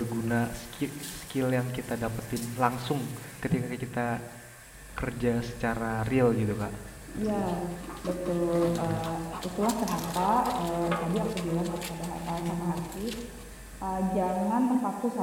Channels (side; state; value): both; identical; correlation 1.00